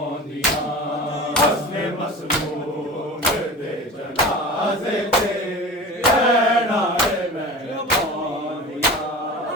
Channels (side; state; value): both; normal; correlation 0.35